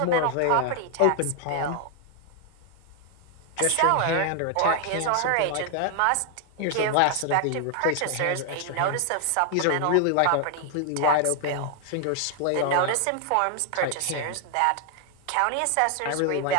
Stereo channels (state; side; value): different; both; correlation 0.00